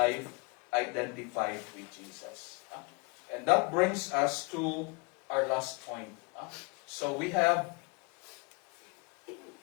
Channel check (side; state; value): right; quieter; 29.9 dB